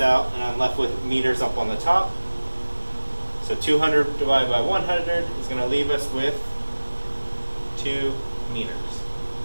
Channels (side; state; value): both; inverted; correlation -1.00